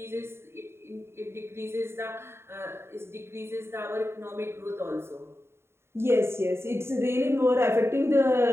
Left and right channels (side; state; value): left; late; 0.12 ms